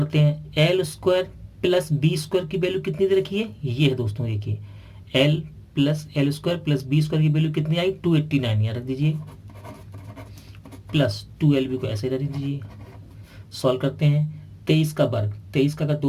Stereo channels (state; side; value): identical; both; correlation 1.00